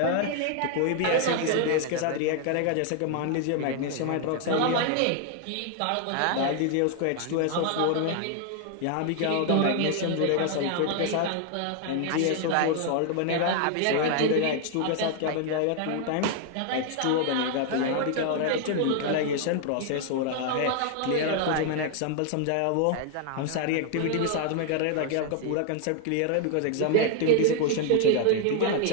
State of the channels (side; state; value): both; different; correlation 0.00